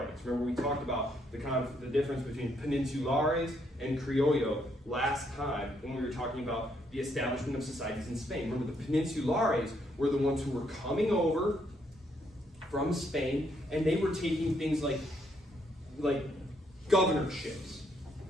Remember, we talked about the difference between peninsulares and criollo last time when we were talking about the establishment of societies in Spain. Remember, the peninsulares were the ones who were coming over from Spain, and they were taking things like governorships.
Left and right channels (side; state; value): both; normal; correlation 0.73